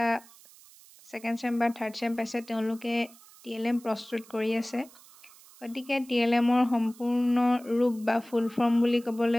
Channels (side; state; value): right; noise; hiss, 23 dB below the sound